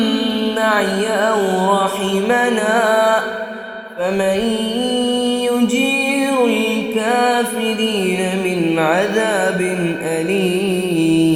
معي أو رحمنا فمن يجير الكافرين من عذاب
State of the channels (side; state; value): both; identical; correlation 1.00